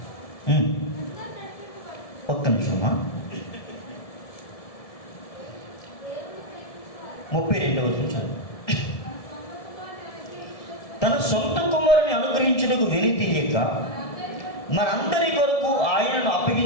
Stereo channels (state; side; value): late; right; 1.7 ms